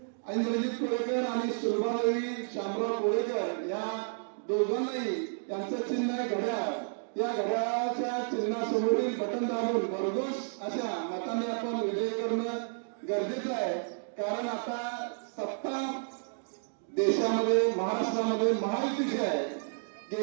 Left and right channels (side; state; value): left; silent; digital silence